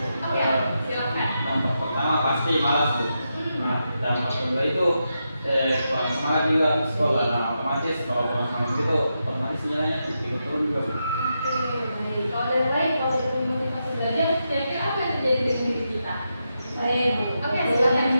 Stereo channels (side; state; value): both; inverted; correlation -0.86